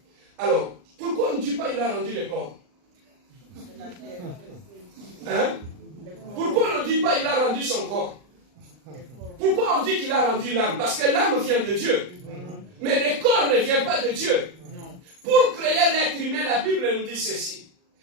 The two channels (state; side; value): late; left; 39 ms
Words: Alors, pourquoi on ne dit pas il a rendu le corps? Hein? Pourquoi on ne dit pas il a rendu son corps? Pourquoi on dit qu'il a rendu l'âme? Parce que l'âme vient de Dieu. Mais le corps ne vient pas de Dieu. Pour créer l'être humain, la Bible nous dit ceci.